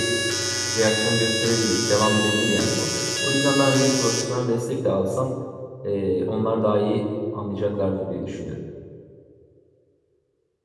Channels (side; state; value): both; identical; correlation 1.00